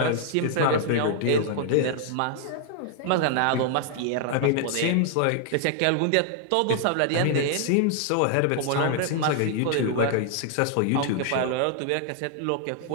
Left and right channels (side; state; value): both; different; correlation 0.00